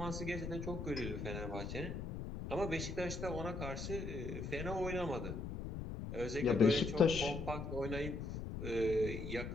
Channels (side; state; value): left; noise; rumble, 6 dB below the sound